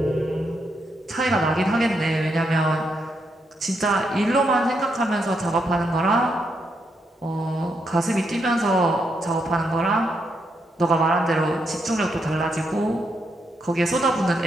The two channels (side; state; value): both; normal; correlation 0.80